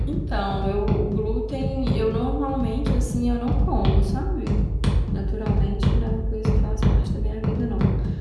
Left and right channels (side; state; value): both; identical; correlation 1.00